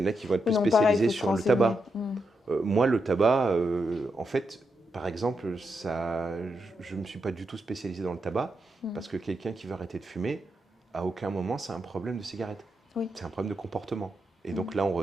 en a qui vont être Oui, plus non, pareil, il spécialisés faut se sur le renseigner. tabac. Moi, le tabac, en fait, par exemple, ça, je ne me suis pas du tout spécialisé dans le tabac Mm. parce que quelqu'un qui veut arrêter de fumer, à aucun moment, c'est un problème de cigarette. Oui. C'est un problème de comportement. Et Mm. donc là, on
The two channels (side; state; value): both; normal; correlation 0.84